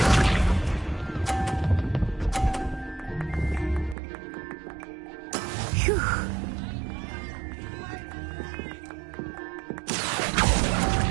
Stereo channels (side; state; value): left; drops out; at 4.0 s